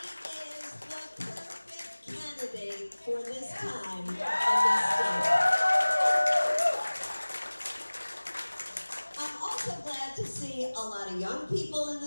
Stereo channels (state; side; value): inverted; both; correlation -1.00